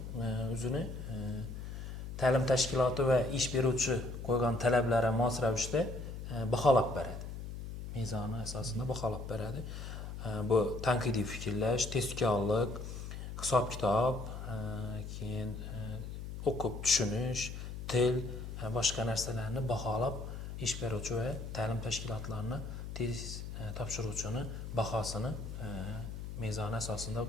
o'zini ta'lim tashkiloti va ish beruvchi qo'ygan talablari mos ravishda baholab beradi. Mezoni asosida baholab beradi. Bu tanqidiy fikrlash, testkorlik, hisob-kitob, keyin o'qib tushunish, til, boshqa narsalarni baholab ish beruvchi va ta'lim tashkilotlarini test topshiruvchini bahosini mezoni asosida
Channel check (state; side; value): noise; left; hum, 8 dB below the sound